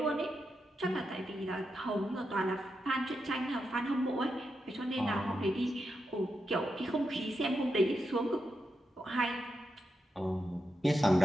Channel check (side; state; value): both; normal; correlation 0.86